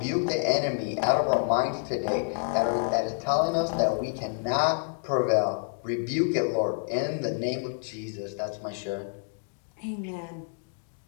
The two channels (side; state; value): right; silent; 59 dB below the other